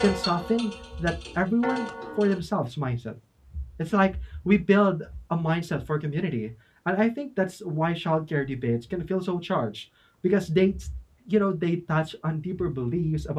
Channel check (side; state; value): both; identical; correlation 1.00